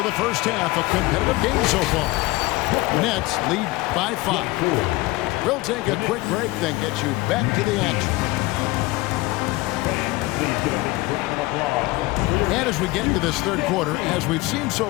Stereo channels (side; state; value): right; quieter; 21.1 dB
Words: the first half. A competitive game so far. Nets lead by 5. We'll take a quick break, then get you back to the action. And as we get into this third quarter, as we've seen